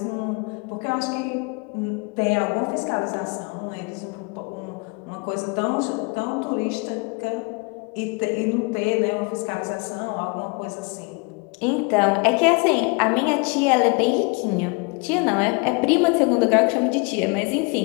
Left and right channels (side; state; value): right; quieter; 30.5 dB